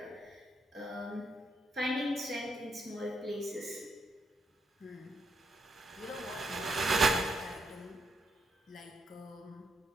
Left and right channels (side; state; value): both; normal; correlation 0.77